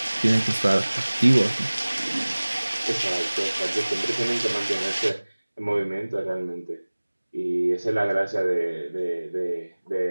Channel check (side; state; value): both; inverted; correlation -1.00